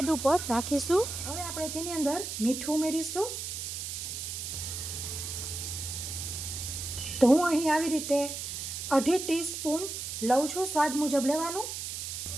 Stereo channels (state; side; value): noise; right; hiss, 5 dB below the sound